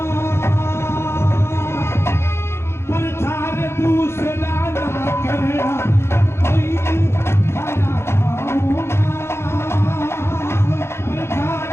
प्रचार दूसरा ना करना, कोई थाना गाऊंगा, प्रचार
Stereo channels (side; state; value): right; late; 0.12 ms